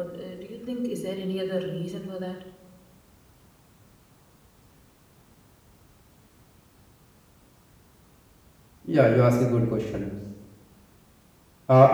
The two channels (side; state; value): both; identical; correlation 1.00